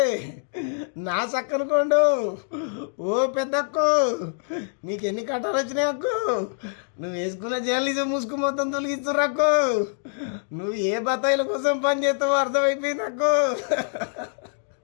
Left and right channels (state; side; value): silent; right; digital silence